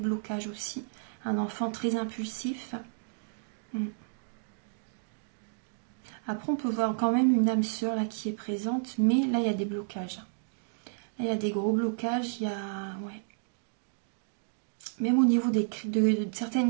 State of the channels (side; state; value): left; silent; digital silence